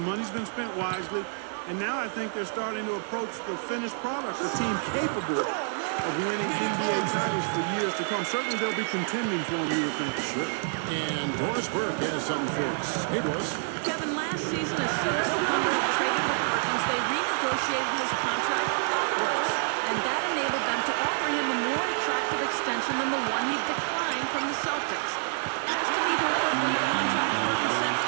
money's been spent wisely, and now I think they're starting to approach the finished product, a team capable of winning NBA titles for years to come. Certainly they'll be contending for them, you would think. Sure. And Doris Burke has something for us. Hey, Doris. Kevin, last season, as soon as the Thunder had traded for Perkins, they renegotiated his contract upwards, and that enabled them to offer him a more attractive extension than the one he declined from the Celtics. Asked to be hooked up in the contract, Perkins said,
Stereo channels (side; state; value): left; silent; 57 dB below the other